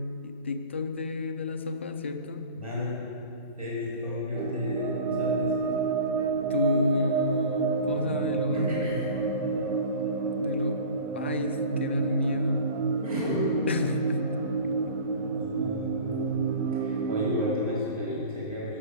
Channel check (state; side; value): inverted; both; correlation -0.39